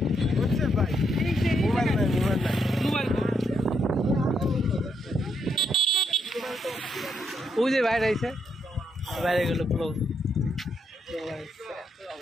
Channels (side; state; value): both; normal; correlation 0.77